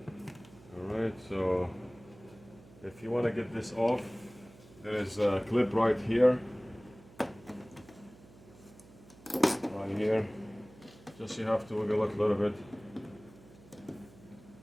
Alright, so if you want to get this off, there is a clip right here. Right here. Just you have to wiggle it a little bit.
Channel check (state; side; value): noise; right; hum, 22 dB below the sound